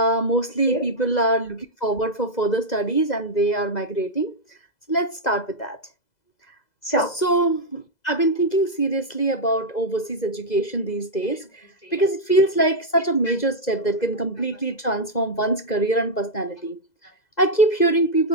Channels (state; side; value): late; right; 2.0 ms